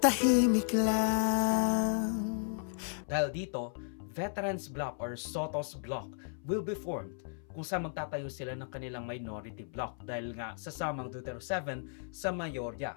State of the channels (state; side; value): silent; right; 55 dB below the other